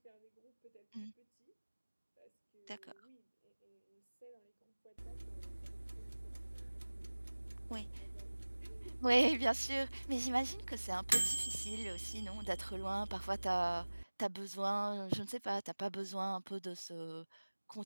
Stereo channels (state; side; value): inverted; both; correlation -1.00